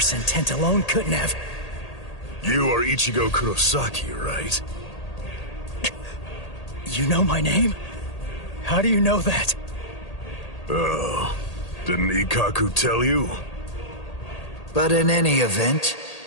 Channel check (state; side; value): late; right; 1.8 ms